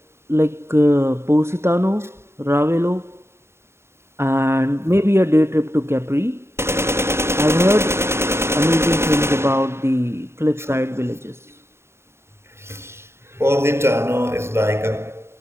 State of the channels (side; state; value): left; late; 0.12 ms